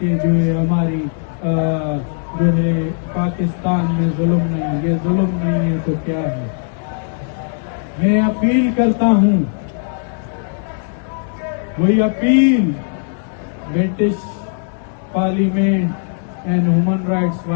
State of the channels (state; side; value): silent; right; 67 dB below the other